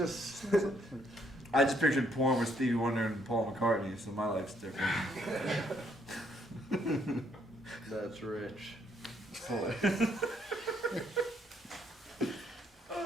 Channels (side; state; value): both; normal; correlation 0.70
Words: I just pictured porn with Stevie Wonder and Paul McCartney, so my life's different. that's rich.